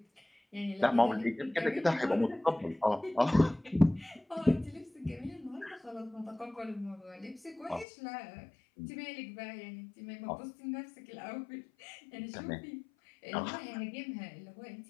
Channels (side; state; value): right; drops out; at 7.9 s